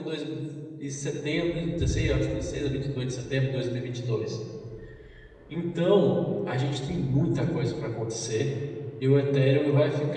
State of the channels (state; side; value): identical; both; correlation 1.00